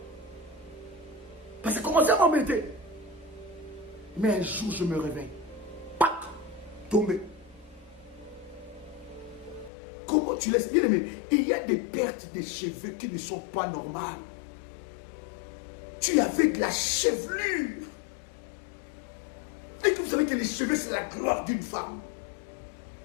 Parce que ça commençait à m'embêter. Mais un jour, je me réveille. Pac! Tombé. Comment tu laisses bien aimer? Il y a des pertes de cheveux qui ne sont pas normales. Tu avais de la chevelure. Et que vous savez que les cheveux, c'est la gloire d'une femme.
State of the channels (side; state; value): right; drops out; at 9.7 s